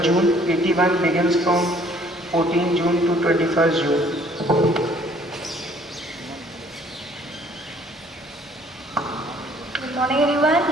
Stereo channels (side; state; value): both; normal; correlation 0.59